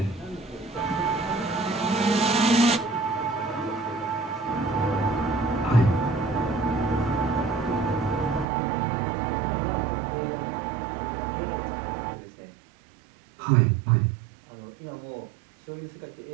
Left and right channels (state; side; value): drops out; left; at 8.5 s